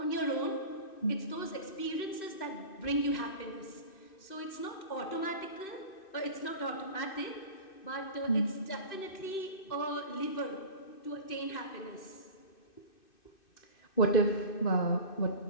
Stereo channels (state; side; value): late; right; 2.6 ms